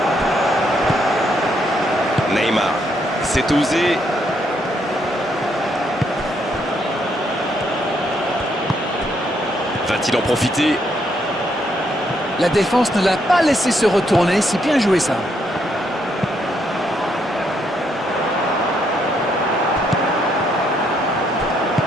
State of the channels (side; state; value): both; normal; correlation 0.74